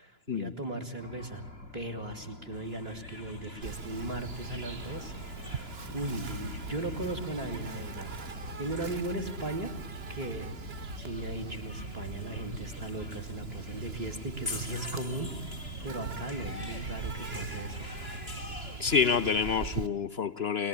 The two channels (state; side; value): late; left; 2.9 ms